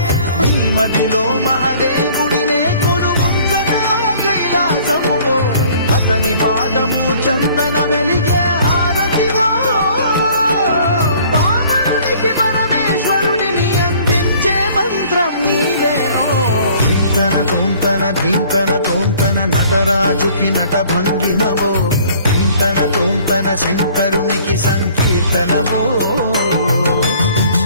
నీ మదిలో మహాదేవుడినే కొలుగుంచగా కైలాసమువో అతని పాదము చందన వెలిగే హారతివో పావనునికి పరమేశ్వరుడిని అందించే మంత్రం నీవేనో ధీంతన తోంతన ధీంతన తోంతన నటరాజుకి నట భంగిమవో ధీంతన తోంతన శంకరునికి సంకీర్తనవో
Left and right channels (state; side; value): inverted; both; correlation -0.54